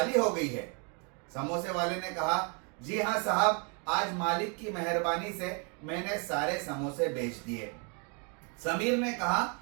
हो गई है। समोसे वाले ने कहा, जी हाँ साहब, आज मालिक की मेहरबानी से मैंने सारे समोसे बेच दिए। समीर ने कहा,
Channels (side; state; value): left; quieter; 35.8 dB